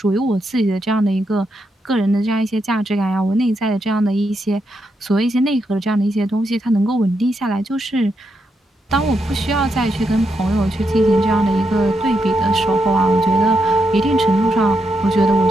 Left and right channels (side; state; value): both; normal; correlation 0.82